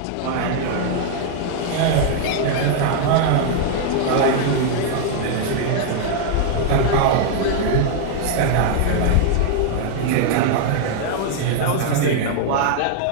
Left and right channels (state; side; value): different; both; correlation -0.01